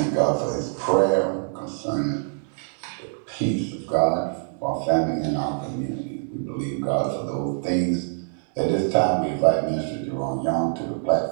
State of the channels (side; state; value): left; silent; digital silence